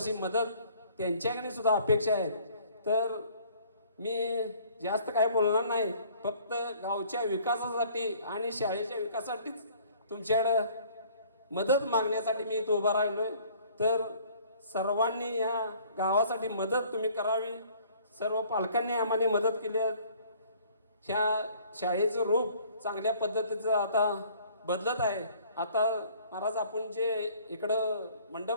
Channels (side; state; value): both; inverted; correlation -0.56